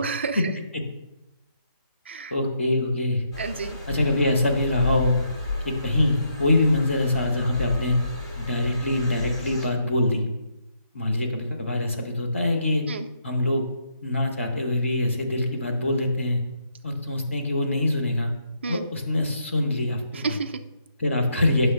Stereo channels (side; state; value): both; inverted; correlation -0.76